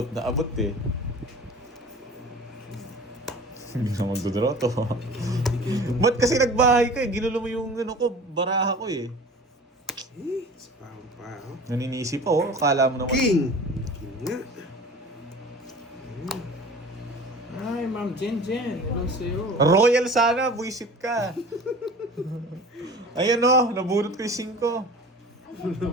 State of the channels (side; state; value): both; normal; correlation 0.41